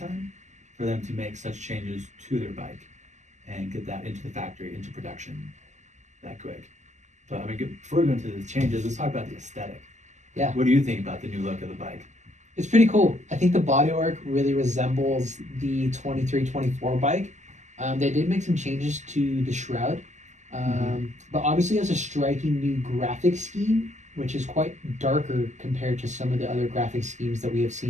for them to make such changes to their bike and get that into the factory, into production that quick. But I mean, before we go into the changes, let's talk about the aesthetic. Yeah. What do you think about the new look of the bike? It's pretty cool. I think the bodywork really resembles the 23-24 bike. They did make some changes to the shroud, but obviously has a striking new graphic scheme, which is quite darker compared to some of the other graphic schemes that we have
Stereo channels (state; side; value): late; left; 0.34 ms